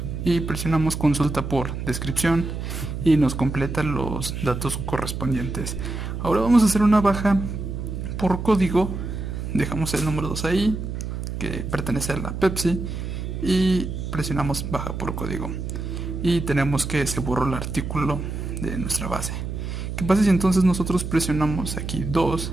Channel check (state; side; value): noise; right; hum, 5 dB below the sound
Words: Y presionamos consulta por descripción y nos completa los datos correspondientes. Ahora vamos a hacer una baja por código. Dejamos el número 2 ahí, que pertenece a la Pepsi, y presionamos baja por código. Y tenemos que se borró el artículo de nuestra base. ¿Qué pasa si entonces nosotros presionamos aquí 2